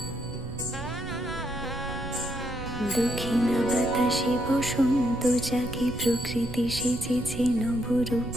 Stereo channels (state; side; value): noise; right; rumble, 10 dB below the sound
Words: বাতাসে বসন্ত জাগে, প্রকৃতি সেজেছে নবরূপ